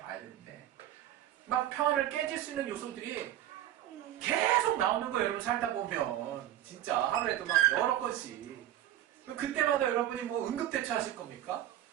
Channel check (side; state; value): left; quieter; 12.5 dB